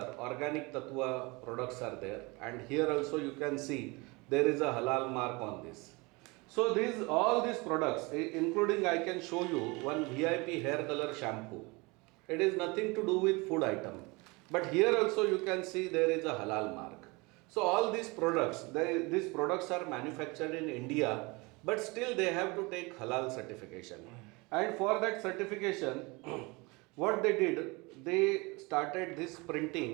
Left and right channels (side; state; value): left; quieter; 25.9 dB